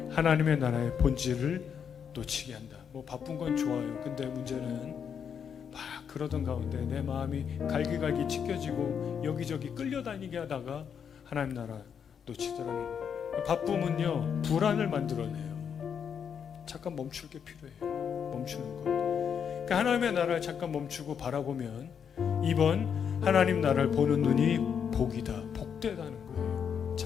하나님의 나라의 본질을 놓치게 한다. 뭐 바쁜 건 좋아요. 근데 문제는 막 그러던 가운데 내 마음이 갈기갈기 찢겨지고 여기저기 끌려다니게 하다가 하나님 나라 놓치더라는 거예요. 바쁨은요, 불안을 만들어내요. 잠깐 멈출 게 필요해요. 멈추는 것. 그러니까 하나님의 나라를 잠깐 멈추고 바라보면, 2번 하나님 나라를 보는 눈이 복이다, 복되다는 거예요.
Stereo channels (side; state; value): right; quieter; 7.5 dB